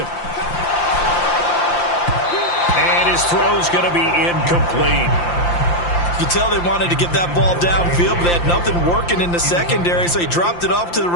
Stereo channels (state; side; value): late; right; 5.8 ms